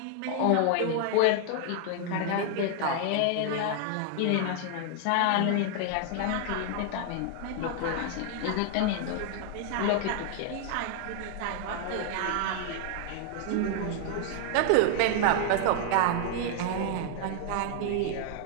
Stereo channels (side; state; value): both; different; correlation 0.00